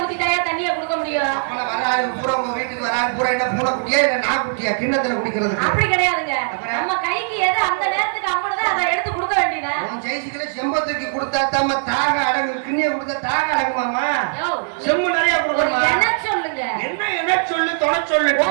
ஊத்திட்டாயா தண்ணிய கொடுக்க முடியும்? அப்பல வராது பூரா உங்க வீட்டுக்கு வராது பூரா என்ன பூனை குட்டியா இல்ல நான் குட்டியா கிண்ணத்துல குடிக்கிறதுக்கு? அப்படி கிடையாதுங்க. அப்புறம்? நம்ம கைக்கு எது அந்த நேரத்துக்கு அம்மனதா அதை எடுத்து கொடுக்க வேண்டியதா? உன் ஜெயிச்சுக்கல செம்பத்துக்கு கொடுத்தா தாம தாக அடங்கு, கிண்ணிய கொடுத்தா தாக அடங்குமாமா? யோ, செம்பு நிறைய ஒரு கொடுக்கணுமா? என்ன சொல்லுங்க. என்ன சொல்லு தொண சொல்லு.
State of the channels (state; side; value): silent; left; 66 dB below the other